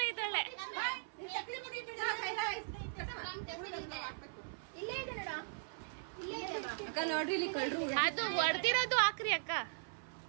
ಇದ್ದಾಳೆ. ಅಕ್ಕ ನೋಡ್ರಿ ಇಲ್ಲಿ ಕಳ್ರು. ಅದು ಹೊಡೆದಿರೋದು ಹಾಕ್ರಿ ಅಕ್ಕ.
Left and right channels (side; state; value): left; silent; 52 dB below the other